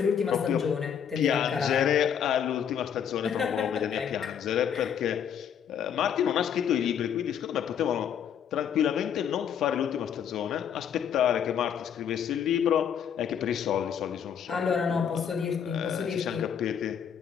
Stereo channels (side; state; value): right; quieter; 8.3 dB